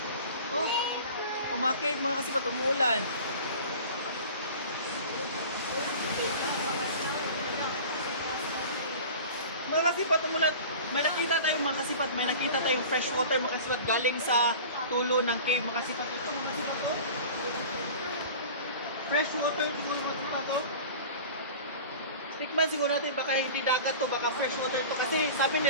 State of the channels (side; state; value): both; inverted; correlation -0.38